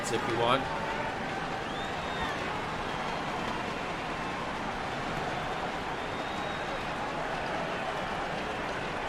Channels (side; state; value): both; identical; correlation 1.00